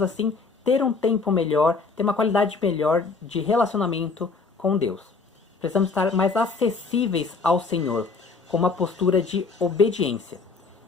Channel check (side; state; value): right; quieter; 4.4 dB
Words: assim ter um tempo melhor, ter uma qualidade melhor de relacionamento com Deus. Precisamos estar mais acessíveis ao Senhor, com uma postura de obediência.